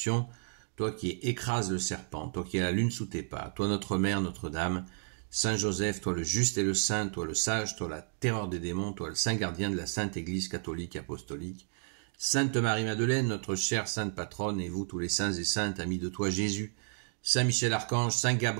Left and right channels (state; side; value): silent; left; digital silence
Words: toi qui écrases le serpent, toi qui as la lune sous tes pas, toi notre Mère, Notre-Dame, Saint Joseph, toi le juste et le saint, toi le sage, toi la terreur des démons, toi le saint gardien de la Sainte Église catholique apostolique, Sainte Marie-Madeleine, notre chère sainte patronne, et vous tous les saints et saintes, amis de toi Jésus, Saint Michel Archange, Saint